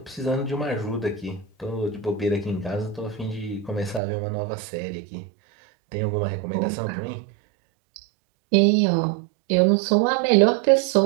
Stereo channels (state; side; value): drops out; left; at 4.0 s